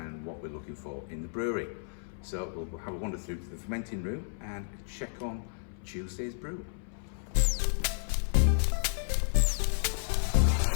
what we're looking for in the brewery. So we'll have a wander through to the fermenting room and check on Tuesday's brew.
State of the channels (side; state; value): right; silent; 56 dB below the other